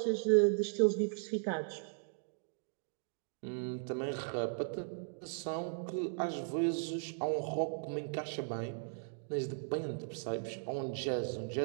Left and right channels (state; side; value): silent; left; digital silence